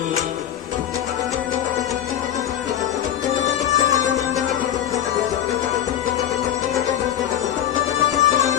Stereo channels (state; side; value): quieter; right; 10.8 dB